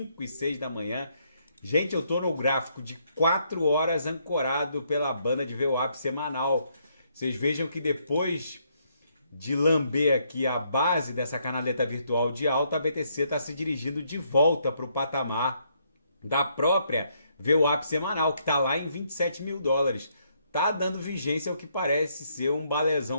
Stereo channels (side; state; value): both; inverted; correlation -0.72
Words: e 6 da manhã. Gente, eu tô no gráfico de 4 horas ancorado pela banda de VWAP semanal. Vocês vejam que depois de lamber aqui a base dessa canaleta virtual de alta, a BTC está se dirigindo de volta para o patamar da própria VWAP semanal, que está lá em 27 mil dólares. Tá dando vigência ao que parece ser um